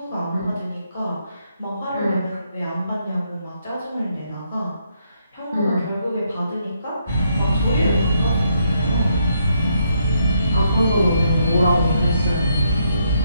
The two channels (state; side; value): inverted; both; correlation -0.75